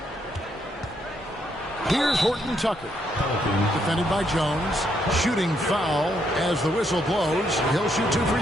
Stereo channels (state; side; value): normal; both; correlation 0.75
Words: Here's Horton Tucker. Defended by Jones. Shooting foul as the whistle blows. He'll shoot 2